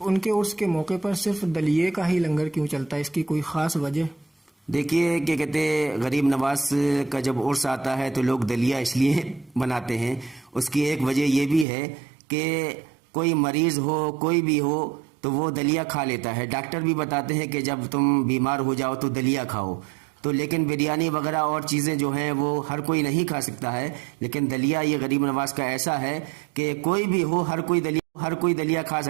उनके उर्स के मौके पर सिर्फ दलिये का ही लंगर क्यों चलता है, इसकी कोई ख़ास वजह? देखिए, क्या कहते हैं, गरीब नवाज का जब उर्स आता है तो लोग दलिया इसलिए बनाते हैं, उसकी एक वजह यह भी है कि कोई मरीज़ हो, कोई भी हो तो वो दलिया खा लेता है। डॉक्टर भी बताते हैं कि जब तुम बीमार हो जाओ तो दलिया खाओ। तो लेकिन बिरयानी वगैरह और चीज़ें जो हैं वो हर कोई नहीं खा सकता है, लेकिन दलिया ये गरीब नवाज का ऐसा है कि कोई भी हो हर कोई दलिया खा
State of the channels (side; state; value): left; drops out; at 11.7 s